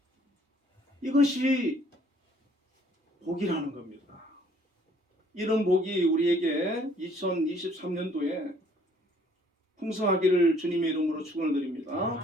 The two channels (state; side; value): normal; both; correlation 0.60